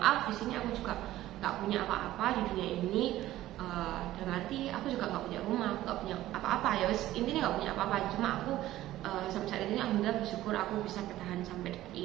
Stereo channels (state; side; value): quieter; left; 14.9 dB